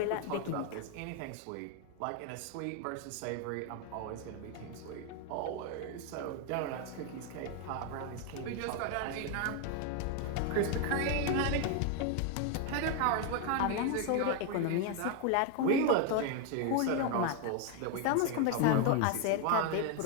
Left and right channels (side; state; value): both; different; correlation 0.01